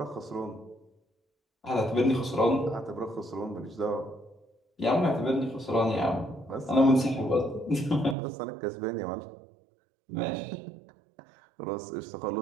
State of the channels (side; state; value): left; drops out; at 8.2 s